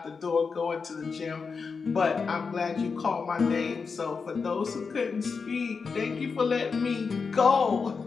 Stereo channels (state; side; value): quieter; right; 5.1 dB